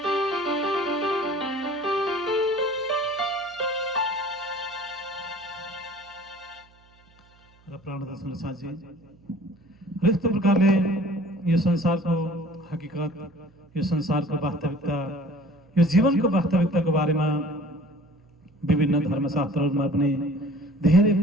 र प्राणदर्शन साझी यस्तो प्रकारले यो संसारको हकीकत, यो संसारको वास्तविकता, यो जीवनको वास्तविकताको बारेमा विभिन्न धर्मशास्त्रहरूमा पनि धेरै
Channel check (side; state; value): right; noise; hum, 29 dB below the sound